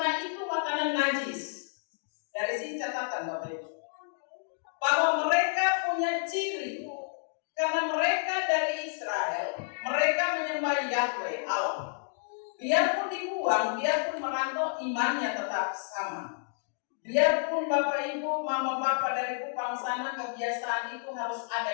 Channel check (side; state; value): right; silent; digital silence